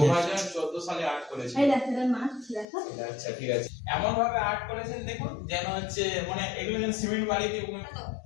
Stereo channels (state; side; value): drops out; right; at 2.7 s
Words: সালে আর্ট করেছে। আচ্ছা ঠিক আছে, এমন ভাবে আর্ট করেছেন দেখুন যেন হচ্ছে মানে এগুলো যেন সিমেন্ট বালি দিয়ে